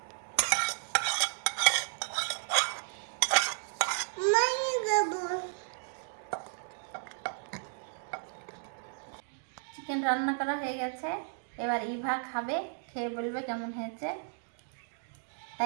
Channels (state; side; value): silent; left; digital silence